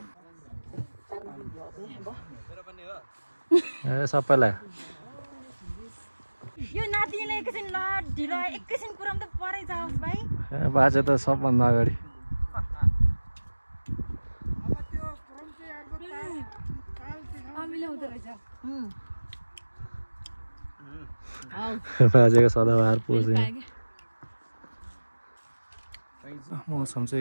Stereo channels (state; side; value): inverted; both; correlation -1.00